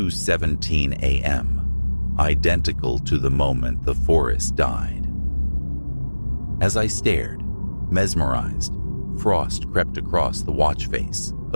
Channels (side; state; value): both; inverted; correlation -1.00